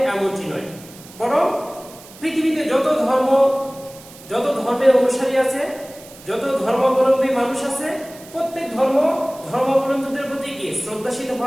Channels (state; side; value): noise; right; hiss, 20 dB below the sound